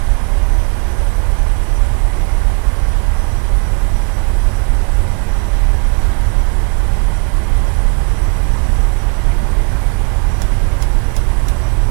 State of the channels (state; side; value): quieter; left; 35.3 dB